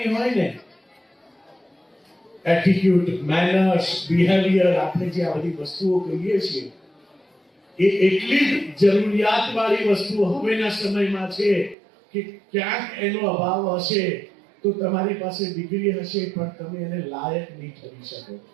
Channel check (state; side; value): drops out; left; at 11.8 s